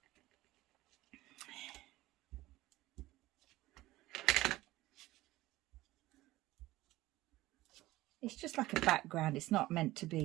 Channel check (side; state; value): left; quieter; 17.5 dB